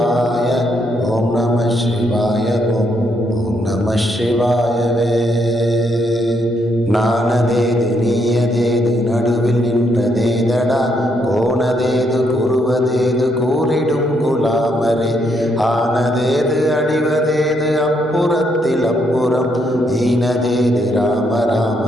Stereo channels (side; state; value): both; normal; correlation 0.75